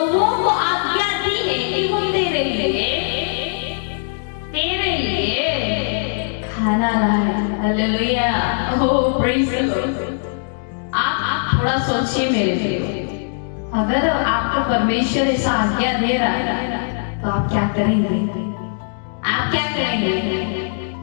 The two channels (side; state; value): right; silent; digital silence